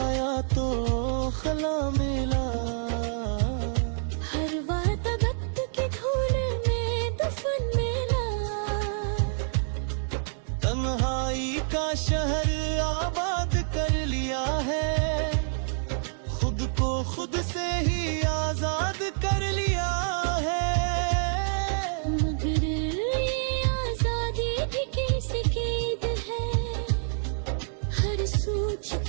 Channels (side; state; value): left; silent; digital silence